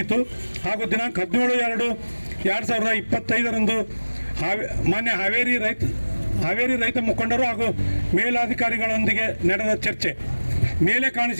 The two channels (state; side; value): inverted; both; correlation -1.00